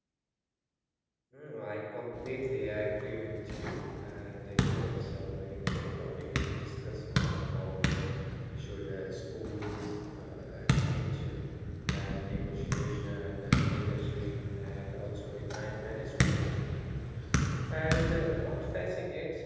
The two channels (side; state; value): both; identical; correlation 1.00